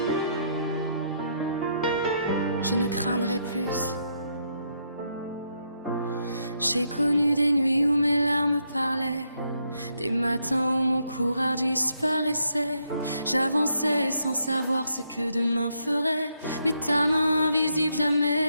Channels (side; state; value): both; inverted; correlation -0.76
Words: Je ne craindrai plus. J'ai connu des nuits où mes larmes parlaient, des matins où mon courage disparaissait. J'avançais sans savoir ce que demain ferait, mais ta main invisible